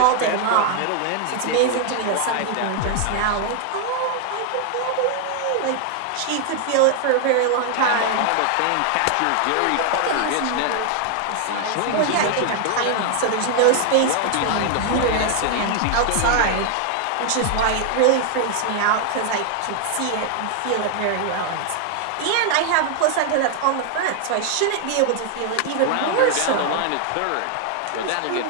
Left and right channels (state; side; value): different; both; correlation 0.00